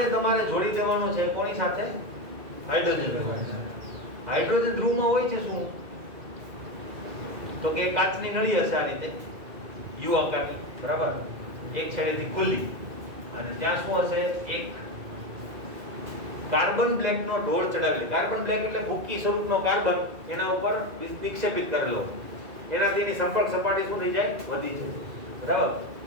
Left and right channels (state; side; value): late; left; 2.2 ms